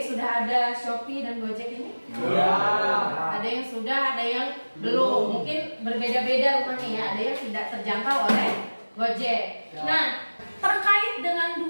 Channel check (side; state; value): both; inverted; correlation -1.00